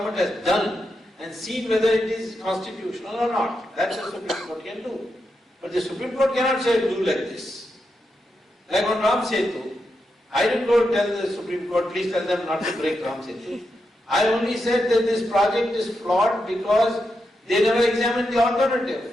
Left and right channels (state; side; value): normal; both; correlation 0.85